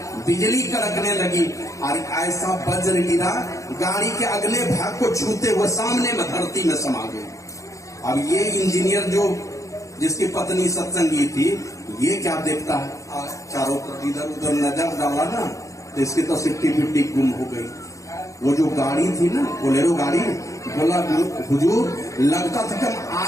बिजली कड़कने लगी और ऐसा वज्र गिरा, गाड़ी के अगले भाग को छूते हुए सामने में धरती में समा गए। अब ये इंजीनियर जो जिसकी पत्नी सत्संगी थी, ये क्या देखता है, चारों तरफ इधर उधर नजर डाला ना, तो इसकी तो सिट्टी पिट्टी गुम हो गई। वो जो गाड़ी थी ना, बोलेरो गाड़ी, बोला हुजूर लगता था कि हम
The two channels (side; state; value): right; late; 0.15 ms